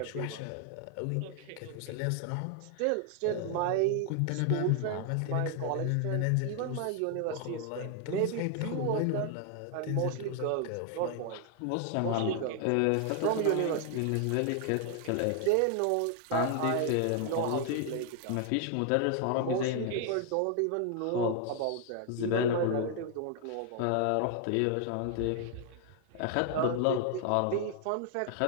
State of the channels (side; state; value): both; different; correlation 0.00